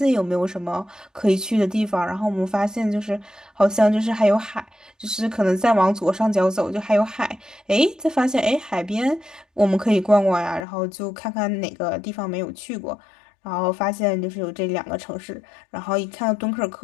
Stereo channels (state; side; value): drops out; right; at 10.7 s